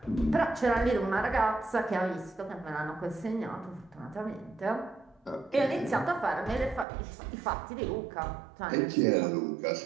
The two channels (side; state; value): left; drops out; at 6.9 s